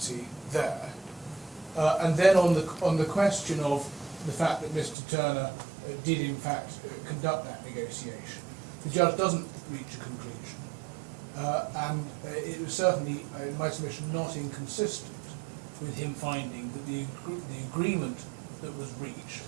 there. And then on the question of the fact that Mr. Turner did in fact conduct that negotiation, the judge doesn't reach a conclusion. And it was certainly, in my submission, not inconsistent with him finding that the agreement that was reached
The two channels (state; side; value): drops out; left; at 5.0 s